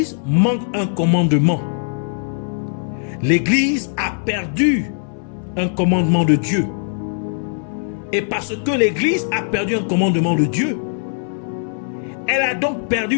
manque un commandement. L'Église a perdu un commandement de Dieu. Et parce que l'Église a perdu un commandement de Dieu, elle a donc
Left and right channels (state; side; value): silent; right; 66 dB below the other